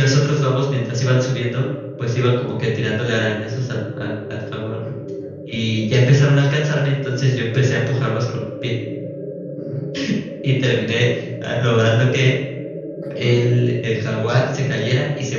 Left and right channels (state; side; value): identical; both; correlation 1.00